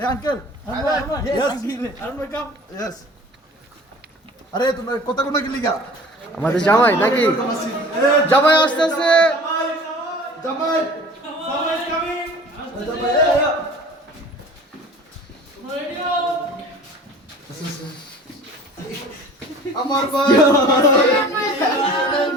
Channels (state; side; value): normal; both; correlation 0.44